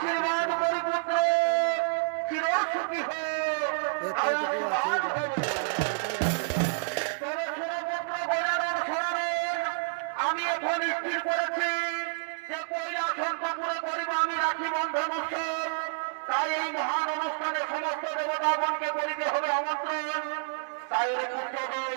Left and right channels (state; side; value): silent; left; digital silence